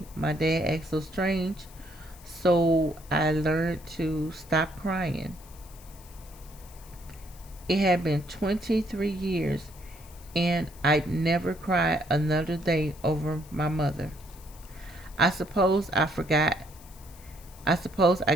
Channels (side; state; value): left; noise; hiss, 22 dB below the sound